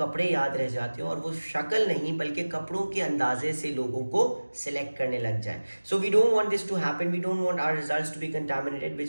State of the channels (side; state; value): both; inverted; correlation -1.00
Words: याद रह जाते हैं और वो शक्ल नहीं बल्कि कपड़ों के अंदाजे से लोगों को सिलेक्ट करने लग जाए. So we don't want this to happen. We don't want our results to be contaminated, which